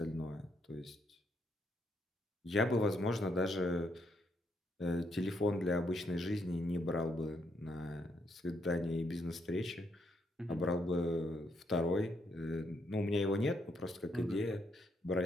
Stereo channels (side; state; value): both; normal; correlation 0.75